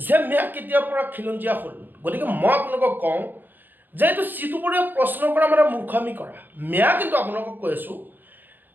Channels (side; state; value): left; late; 0.090 ms